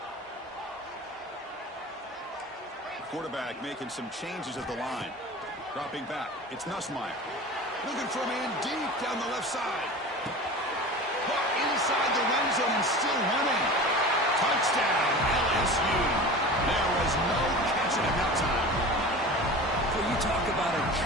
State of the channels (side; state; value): both; normal; correlation 0.35